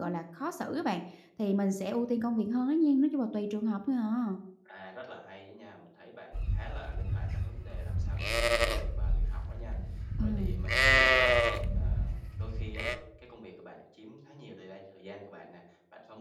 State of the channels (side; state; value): both; identical; correlation 1.00